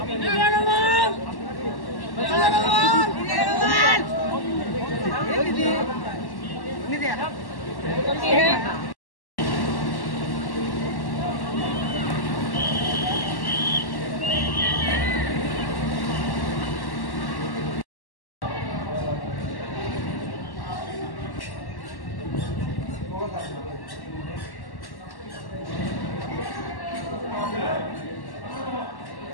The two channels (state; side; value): late; right; 1.1 ms